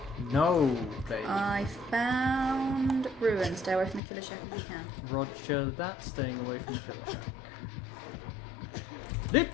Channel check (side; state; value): right; drops out; at 4.0 s